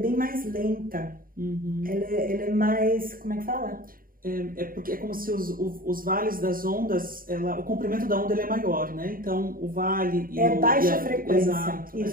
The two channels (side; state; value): left; late; 0.41 ms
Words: mais lenta, ela é mais, como é que fala? Porque é como se os vales das ondas, o comprimento da onda ele é maior, né? Então, o vale... baixa frequência. Exato,